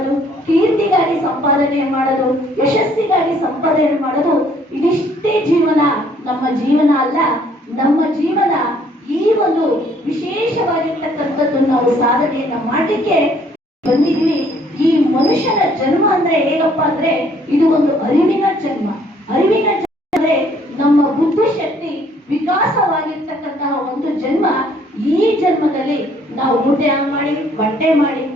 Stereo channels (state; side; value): normal; both; correlation 0.62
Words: ಕೀರ್ತಿಗಾಗಿ ಸಂಪಾದನೆ ಮಾಡೋದು, ಯಶಸ್ಸಿಗಾಗಿ ಸಂಪಾದನೆ ಮಾಡೋದು, ಇದಿಷ್ಟೇ ಜೀವನ. ನಮ್ಮ ಜೀವನ ಅಲ್ಲ. ನಮ್ಮ ಜೀವನ ಈ ಒಂದು ವಿಶೇಷವಾಗಿರ್ತಕ್ಕಂಥದ್ದು ನಾವು ಸಾಧನೆಯನ್ನ ಮಾಡಲಿಕ್ಕೆ ಬಂದಿದ್ವಿ. ಈ ಮನುಷ್ಯನ ಜನ್ಮ ಅಂದ್ರೆ ಹೇಗಪ್ಪ ಅಂದ್ರೆ ಇದು ಒಂದು ಅರಿವಿನ ಜನ್ಮ. ಅರಿವಿನ ಜನ್ಮ ಅಂದ್ರೆ ನಮ್ಮ ಬುದ್ಧಿಶಕ್ತಿ ವಿಕಾಸವಾಗಿರ್ತಕ್ಕಂತಹ ಒಂದು ಜನ್ಮ. ಈ ಜನ್ಮದಲ್ಲಿ ನಾವು ಊಟ ಮಾಡಿ ಬಟ್ಟೆ ಮಾಡಿ